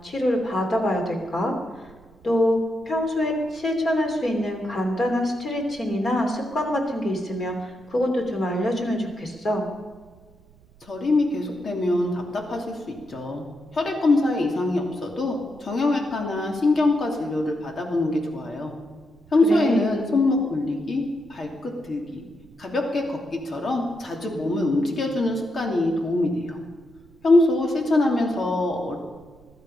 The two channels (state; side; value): noise; right; rumble, 27 dB below the sound